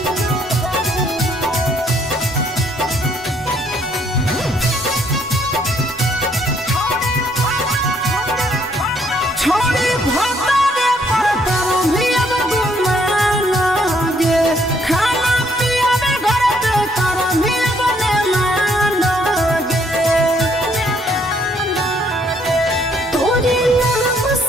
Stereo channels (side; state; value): both; normal; correlation 0.68